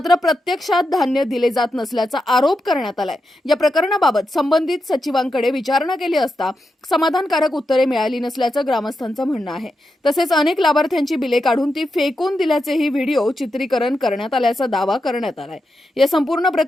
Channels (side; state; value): both; normal; correlation 0.87